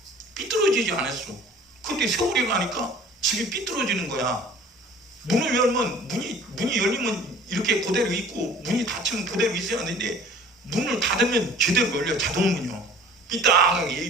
삐뚤어지지 않았어. 근데 세월이 가니까 집이 삐뚤어지는 거야. 문을 열면 문이 열리면 이렇게 그대로 있고, 문이 닫히면 그대로 있어야 하는데 문을 닫으면 제대로 열려. 자동문이요. 삐딱하게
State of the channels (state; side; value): normal; both; correlation 0.48